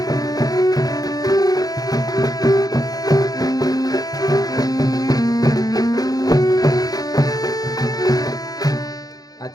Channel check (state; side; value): late; right; 0.18 ms